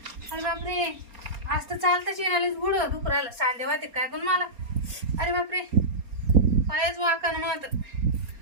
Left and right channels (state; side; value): late; left; 4.3 ms